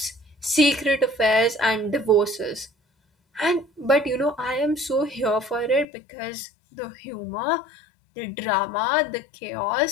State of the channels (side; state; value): right; drops out; at 5.9 s